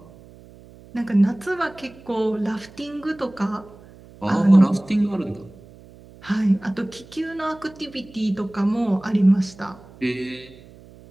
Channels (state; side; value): noise; right; hum, 22 dB below the sound